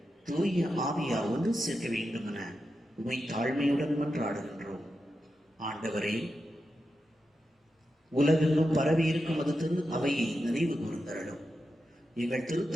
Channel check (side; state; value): both; normal; correlation 0.89